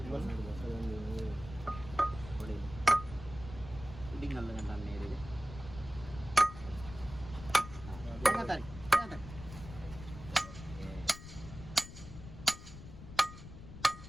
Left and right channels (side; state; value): left; noise; rumble, 13 dB below the sound